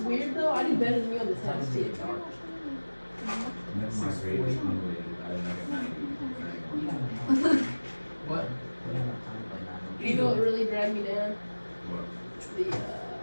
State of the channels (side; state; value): both; inverted; correlation -1.00